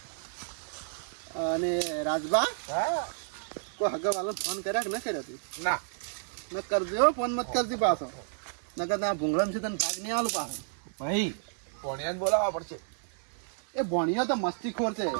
અને રાજભા હા કોઈ હગા વાળો ફોન કર્યા કે ન કર્યા તું? ના ન કરજો ફોન મત કરજી પાછો નકર ના ભૂંગળામ છે તને ભાગ નહીં આલું પાછો. ભાઈ પોણિયાને બોલાવવા પડશે. એ ભણ્યો તો મસ્તીખોર છે.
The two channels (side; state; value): left; silent; digital silence